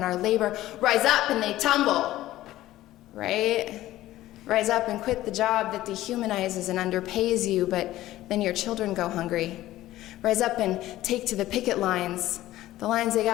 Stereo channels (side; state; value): right; quieter; 15.3 dB